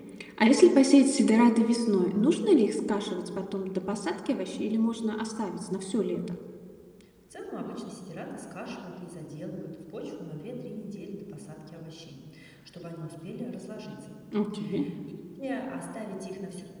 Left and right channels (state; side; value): identical; both; correlation 1.00